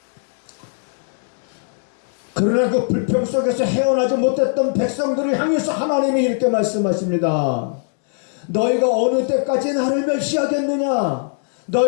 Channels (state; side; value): silent; right; 66 dB below the other